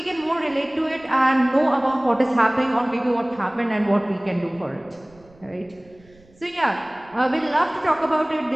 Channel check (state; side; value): noise; right; rumble, 28 dB below the sound